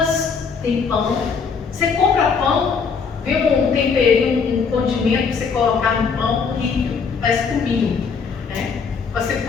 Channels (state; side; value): quieter; right; 5.6 dB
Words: tem pão. Você compra pão, vê um temperinho, um condimento para você colocar no pão, horrível, parece cominho, né? Você